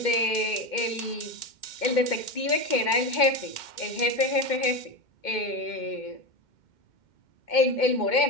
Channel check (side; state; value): right; late; 2.1 ms